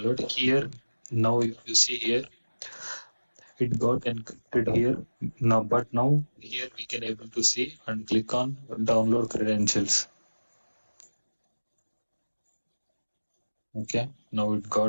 here. Now if you see here, it got encrypted here. Now, but now here we can able to see and click on download credentials. Okay, now it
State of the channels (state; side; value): inverted; both; correlation -1.00